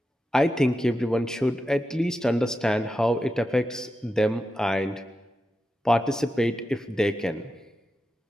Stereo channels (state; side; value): normal; both; correlation 0.89